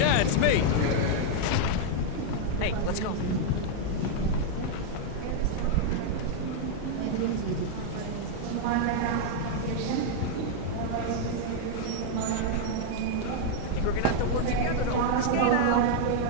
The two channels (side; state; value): both; different; correlation 0.00